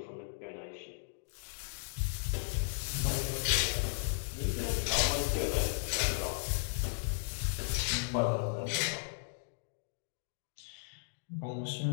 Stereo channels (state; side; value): silent; right; digital silence